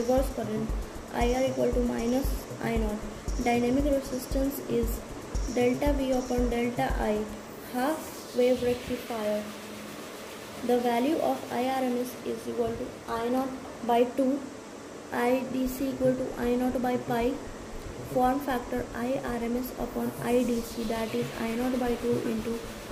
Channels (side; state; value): both; identical; correlation 1.00